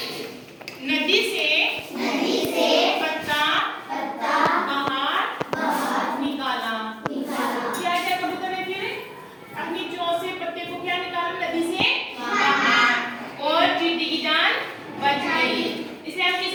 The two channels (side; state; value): both; identical; correlation 1.00